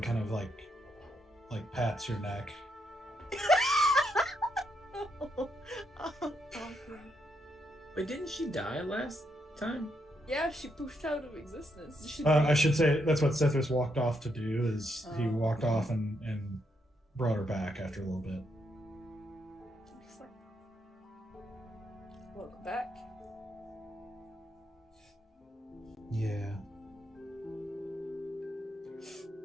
kind of like pats your neck. Wait, didn't she die last time? Yeah, she poofed out of existence. She I should say that's what Sethris walked off to do. Is he Oh. walked off and brought her back after a little bit. Excellent. Welcome back. Yeah.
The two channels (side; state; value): both; normal; correlation 0.78